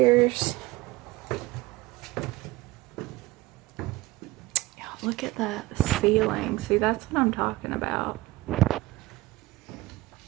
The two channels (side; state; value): left; quieter; 19.6 dB